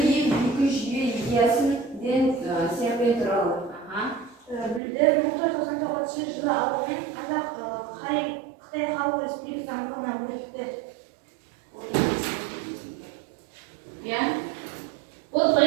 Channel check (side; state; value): left; drops out; at 4.8 s